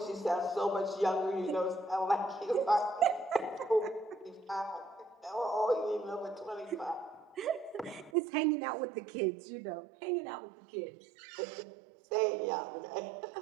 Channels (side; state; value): left; drops out; at 8.1 s